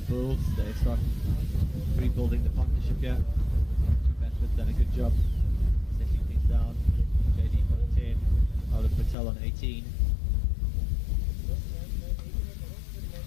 builds. They start rebuilding the partnership here. Two batsmen done a good job settling things down. JD on 10. Oliver Patel on 18.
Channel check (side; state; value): right; drops out; at 9.2 s